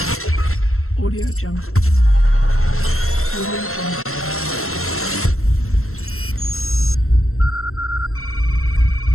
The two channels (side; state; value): right; late; 0.62 ms